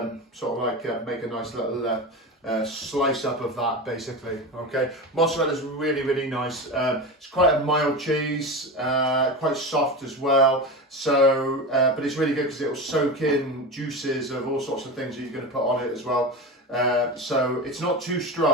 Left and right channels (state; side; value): normal; both; correlation 0.24